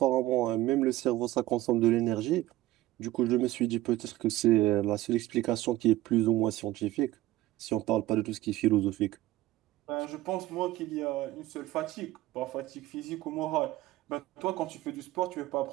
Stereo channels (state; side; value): quieter; left; 16.3 dB